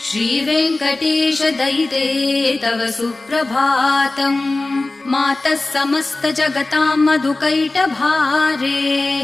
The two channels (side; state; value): right; quieter; 3.1 dB